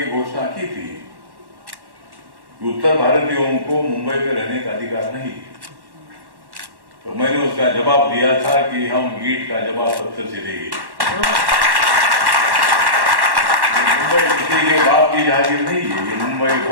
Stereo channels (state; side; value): late; left; 1.1 ms